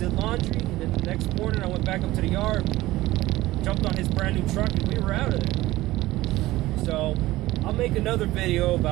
laundry, and then the next morning I went back up to the yard, jumped on his brand new truck, and we were out of there. So I'll make another video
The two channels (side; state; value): left; quieter; 17.5 dB